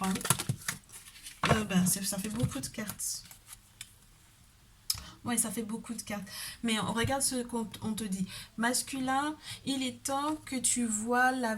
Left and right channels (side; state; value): both; identical; correlation 1.00